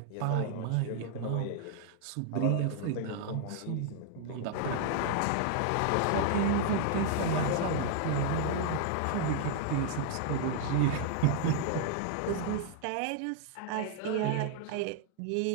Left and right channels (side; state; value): both; different; correlation -0.01